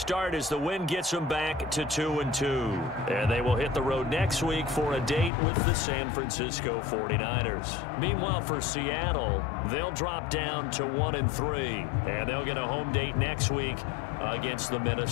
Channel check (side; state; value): right; drops out; at 5.3 s